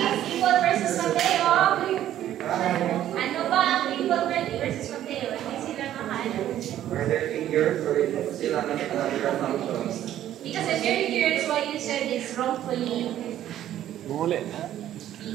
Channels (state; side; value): quieter; left; 12.0 dB